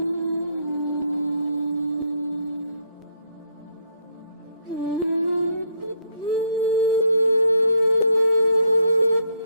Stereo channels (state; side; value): inverted; both; correlation -0.71